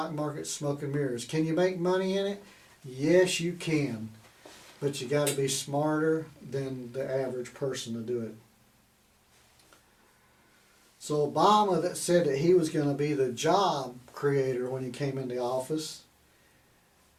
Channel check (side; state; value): both; identical; correlation 1.00